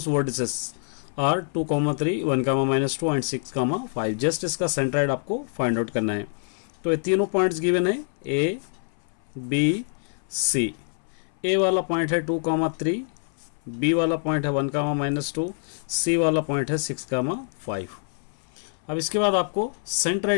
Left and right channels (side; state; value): right; silent; 58 dB below the other